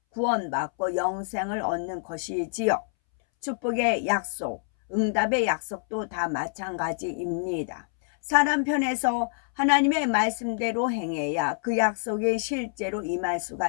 구원받고 영생을 얻는 것이지요. 축복의 약속, 응답의 약속도 다 마찬가지입니다. 사람 편에서 하나님의 말씀대로 행해야 그 약속이 실제로 임할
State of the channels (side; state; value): right; silent; 60 dB below the other